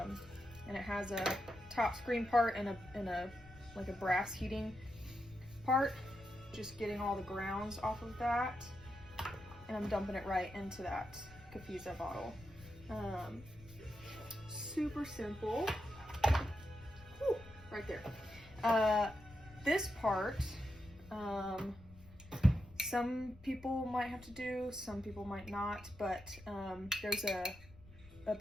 it has a top screen part and a like a brass heating part. Just getting all the grounds off of that, and I'm dumping it right into that Kafiza bottle. Super simple. Whew, right there. This part, some people might have to do, some people might not, but there's a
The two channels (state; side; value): noise; left; rumble, 20 dB below the sound